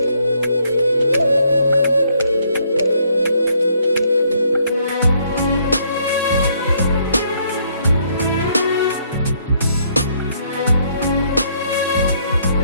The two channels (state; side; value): inverted; both; correlation -0.69